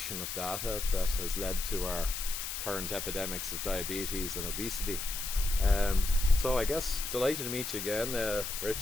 of data that has led to our current epidemics of diabetes and obesity. So I guess delighted to meet you again,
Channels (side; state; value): left; noise; hiss, 4 dB below the sound